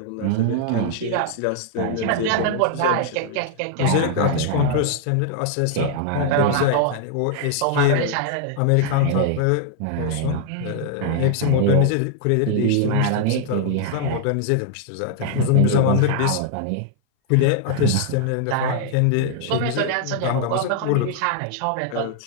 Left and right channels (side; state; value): both; different; correlation 0.00